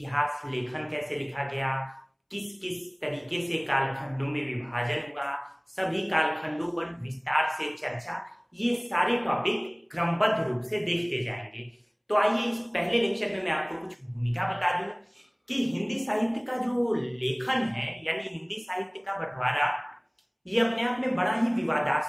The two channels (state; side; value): identical; both; correlation 1.00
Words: लेखन कैसे लिखा गया, किस किस तरीके से कालखंडों में विभाजन हुआ, सभी कालखंडों पर विस्तार से चर्चा, ये सारे टॉपिक क्रमबद्ध रूप से देखते जाएंगे। तो आइए इस पहले लेक्चर में मैं आपको कुछ भूमिका बता दूं कि हिंदी साहित्य का जो लेखन है यानी हिंदी साहित्य का बंटवारा, ये अपने आप में बड़ा ही